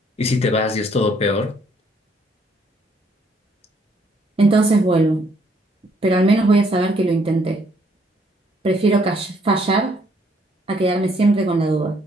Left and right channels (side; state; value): both; normal; correlation 0.67